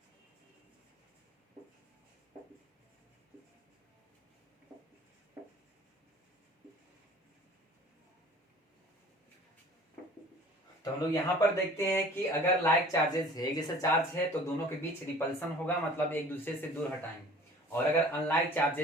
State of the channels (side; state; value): both; normal; correlation 0.48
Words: तो हम लोग यहाँ पर देखते हैं कि अगर लाइक चार्जेस है, एक जैसा चार्ज है, तो दोनों के बीच रिपल्सन होगा, मतलब एक दूसरे से दूर हटाएंगे। और अगर अनलाइक